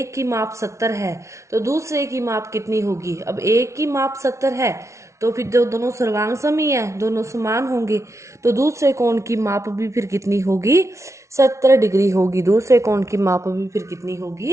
की माप 70 है तो दूसरे की माप कितनी होगी। अब एक की माप 70 है तो फिर जो दोनों सर्वांग सम ही है, दोनों समान होंगे, तो दूसरे कोण की माप भी फिर कितनी होगी, 70 डिग्री होगी। दूसरे कोण की माप भी फिर कितनी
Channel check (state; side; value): late; left; 0.14 ms